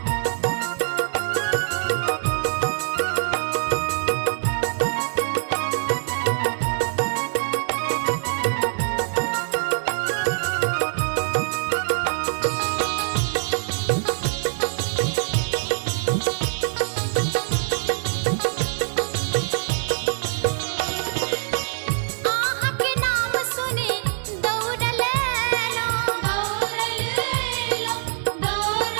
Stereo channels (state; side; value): silent; left; digital silence